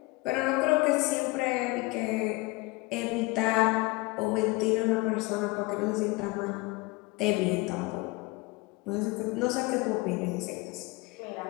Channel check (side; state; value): right; quieter; 23.6 dB